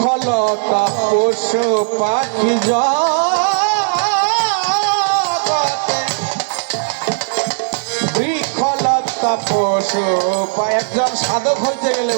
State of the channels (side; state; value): left; silent; 64 dB below the other